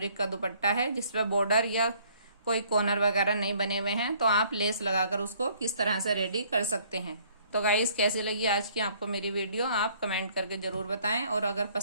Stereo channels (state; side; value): inverted; both; correlation -0.60